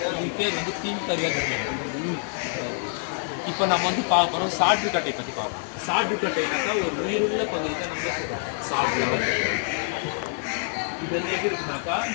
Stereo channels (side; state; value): right; silent; 61 dB below the other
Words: இதுக்கு பேர் வந்து பின்பருவ கட்டை. இப்போ நம்ம வந்து பார்க்க போகிறோம் சாற்றுக்கட்டை பற்றி பார்ப்போம். சாற்றுக்கட்டைனாக்கா ஒரு உயிருள்ள பகுதி தான் நம்ம சொல்கிறோம் சாற்று. இது வந்து எப்படி இருக்குனாக்கா